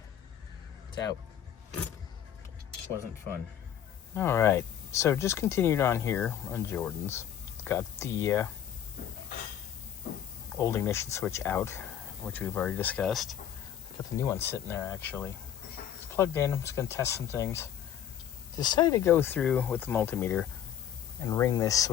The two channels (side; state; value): right; quieter; 9.9 dB